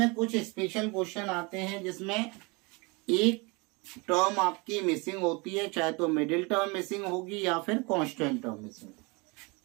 कुछ स्पेशल क्वेश्चन आते हैं जिसमें एक टर्म आपकी मिसिंग होती है, चाहे तो मिडिल टर्म मिसिंग होगी या फिर कांस्टेंट टर्म मिसिंग।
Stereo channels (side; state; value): left; quieter; 28.1 dB